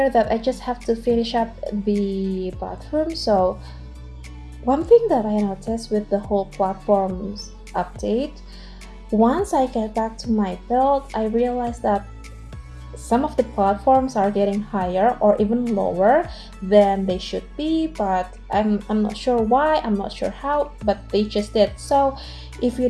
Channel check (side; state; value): both; identical; correlation 1.00